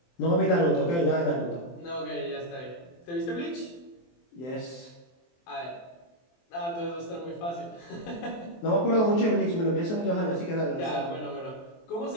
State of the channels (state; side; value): late; right; 23 ms